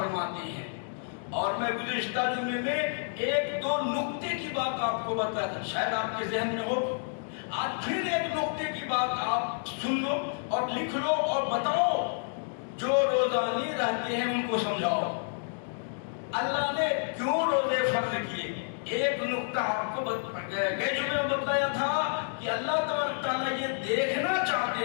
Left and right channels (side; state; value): right; silent; digital silence